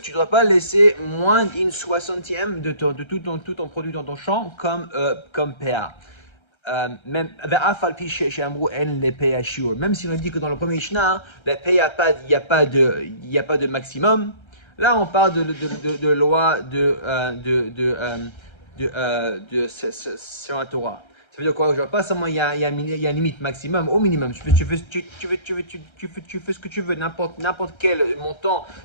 ne dois pas laisser moins d'une soixantième de tout ton produit dans ton champ comme PA. Même si on dit que dans le premier Mishnah, la PA, il n'y a pas de maximum. Là, on parle de loi sur la Torah. Ça veut dire quoi? Genre, pas seulement il y a une limite maximum, au minimum. Tu fais ce que tu veux, n'importe quel montant,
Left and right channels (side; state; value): right; late; 1.3 ms